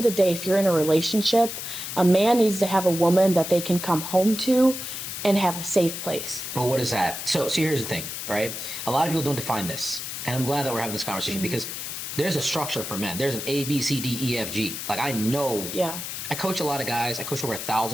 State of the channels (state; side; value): noise; left; hiss, 6 dB below the sound